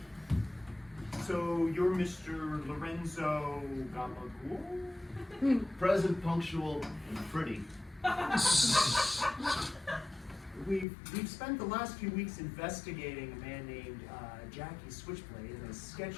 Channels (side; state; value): right; drops out; at 10.9 s